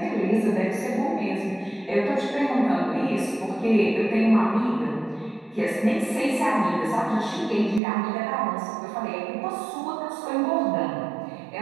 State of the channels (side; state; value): left; drops out; at 7.8 s